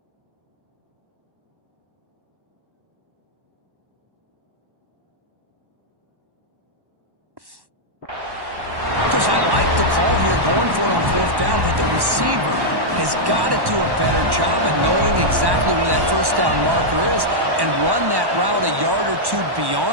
I like the call here, going for it on fourth down, but the receiver has got to do a better job of knowing exactly where that first down marker is and run that route a yard or two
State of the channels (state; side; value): late; left; 1.1 ms